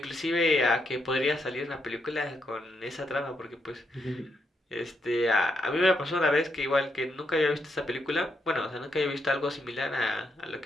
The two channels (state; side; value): normal; both; correlation 0.79